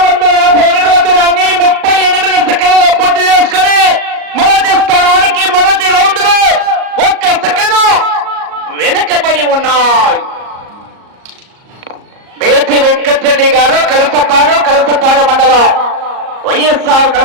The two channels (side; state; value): left; late; 38 ms